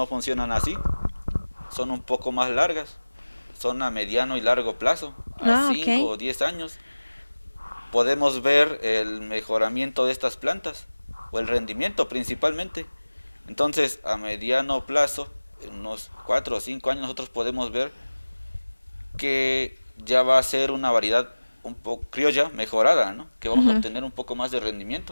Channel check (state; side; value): inverted; both; correlation -1.00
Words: funcionan así, son un poco más largas, son a mediano y largo plazo, a Ah, 5 ok. o 10 años. Podemos ver el mejoramiento de estas plantas, o el rendimiento principalmente. Entonces, a mediano plazo, en unos 4 o 5 años, nosotros podemos ver que ya va a ser una variedad un poco criolla mejorada, ¿no?, que vamos a Ujú. obtener un poco más de